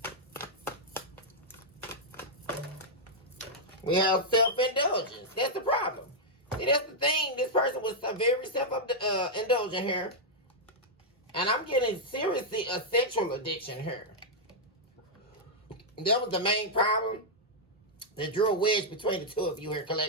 We have self-indulgence. That's the problem. See, that's the thing. This person was very self-indulgent here. And I'm getting seriously a sexual addiction here. That was the main problem that drew a wedge between the two of you here,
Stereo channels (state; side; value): normal; both; correlation -0.06